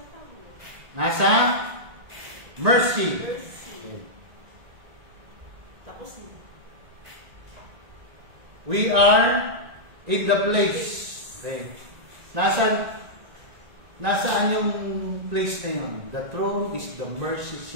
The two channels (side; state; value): left; late; 1.9 ms